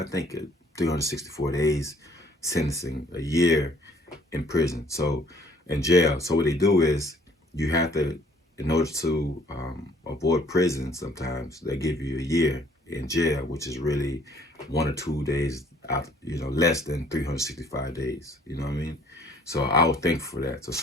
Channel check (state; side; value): normal; both; correlation 0.59